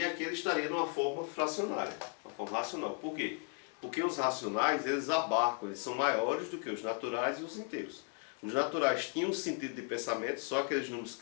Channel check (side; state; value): right; quieter; 39.0 dB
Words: aqui ele estaria numa forma fracionária, uma forma racional. Por quê? Porque os racionais, eles abarcam, eles são maiores do que os naturais e os inteiros. Os naturais tinham um sentido de pensamento, só aqueles números